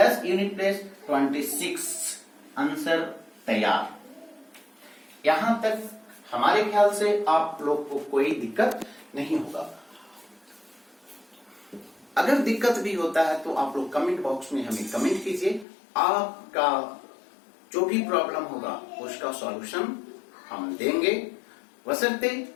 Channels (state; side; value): drops out; right; at 15.7 s